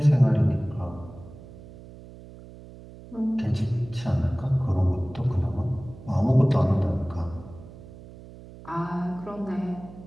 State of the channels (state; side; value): noise; right; hum, 17 dB below the sound